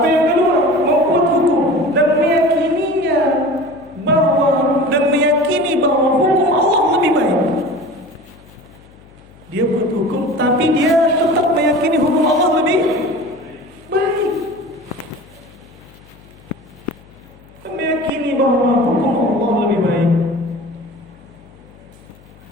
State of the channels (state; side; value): noise; left; hum, 25 dB below the sound